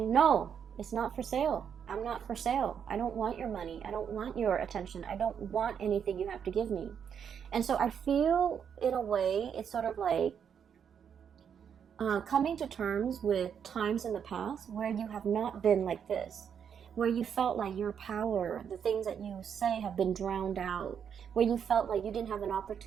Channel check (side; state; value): left; quieter; 7.8 dB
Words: no, it's not for sale. I'm not for sale. I don't want your money. I don't want your attention. I don't want anything you have to give me. And so I feel, in a way, it's sort of like coming to terms with times in the past where you have not been like this, where you felt like your power, the things that you say, have been drowned out, where you felt like you didn't have an